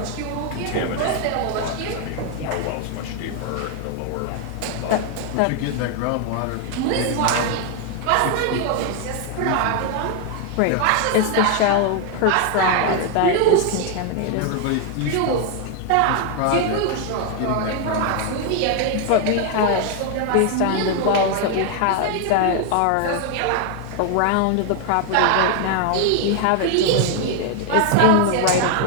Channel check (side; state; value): both; different; correlation 0.01